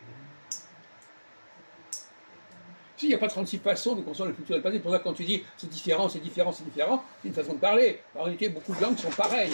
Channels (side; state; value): both; inverted; correlation -1.00